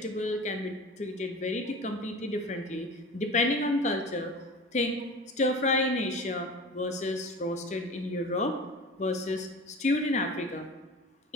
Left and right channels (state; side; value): normal; both; correlation 0.35